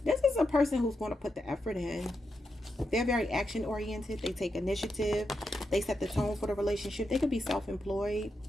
this is a person who's going to put the effort in. They're very action oriented. They take initiative. They set the tone for the relationship. They could be self-employed,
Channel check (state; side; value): normal; both; correlation 0.85